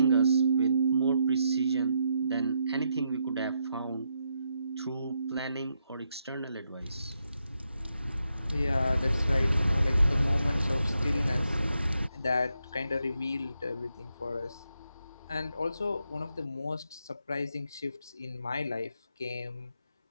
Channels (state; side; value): inverted; both; correlation -0.81